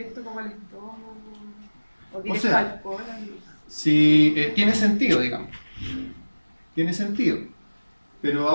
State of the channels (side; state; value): both; inverted; correlation -1.00